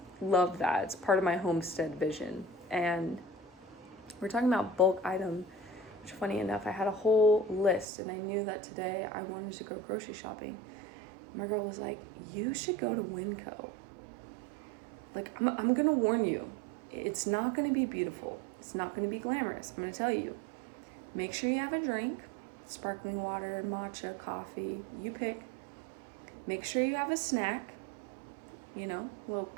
love that. It's part of my homestead vision. And we're talking about bulk item, which funny enough, I had a whole list, and I knew that today I wanted to go grocery shopping. My girl was like, you should go to Winco. Like, I'm going to warn you, it's not going to be beautiful. It's not going to be glamorous. I'm going to tell you. Make sure you have a drink, sparkling water, matcha, coffee, you pick. Make sure you have a snack, a little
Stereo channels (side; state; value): left; drops out; at 7.9 s